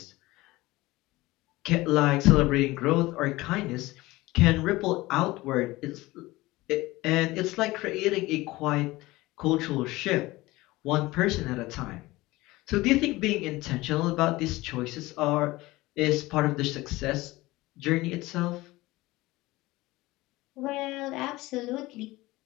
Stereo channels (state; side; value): quieter; right; 19.7 dB